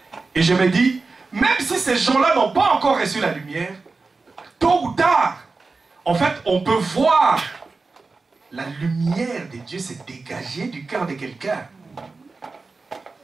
Et je me dis, même si ces gens-là n'ont pas encore reçu la lumière, tôt ou tard, en fait, on peut voir la lumière de Dieu se dégager du cœur de quelqu'un.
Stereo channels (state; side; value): quieter; left; 4.0 dB